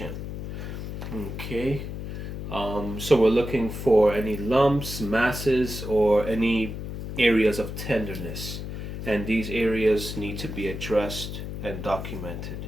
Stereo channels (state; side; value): noise; left; hum, 7 dB below the sound